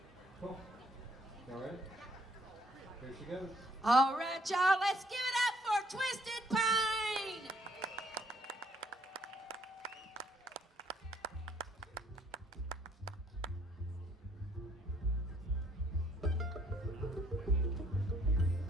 Cool. All right. Here she goes. All right, y'all, let's give it up for Twisted Pine.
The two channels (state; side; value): normal; both; correlation 0.66